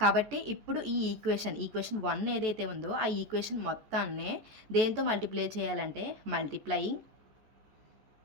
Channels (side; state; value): left; late; 14 ms